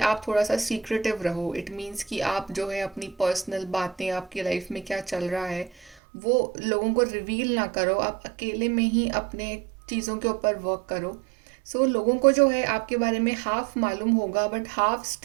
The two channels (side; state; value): left; drops out; at 6.0 s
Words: आप थोड़ा सा सीक्रेटिव रहो। इट मीन्स कि आप जो है अपनी पर्सनल बातें, आपकी लाइफ में क्या चल रहा है, वो लोगों को रिवील ना करो। आप अकेले में ही अपने चीज़ों के ऊपर वर्क करो। सो लोगों को जो है आपके बारे में हाफ मालूम होगा, but half